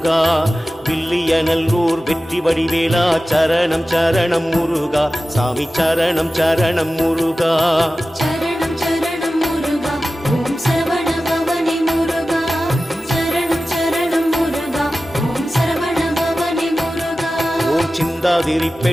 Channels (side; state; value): both; normal; correlation 0.95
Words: வில்லிய நல்லூர் வெற்றி வடிவேலா சரணம் சரணம் முருகா சாமி சரணம் சரணம் முருகா சரணம் சரணம் முருகா ஓம் சரவண பவனே முருகா சரணம் சரணம் முருகா ஓம் சரவண பவனே முருகா ஓம்